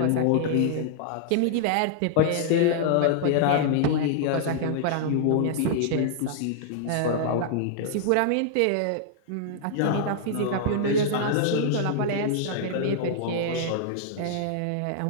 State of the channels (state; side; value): different; both; correlation -0.01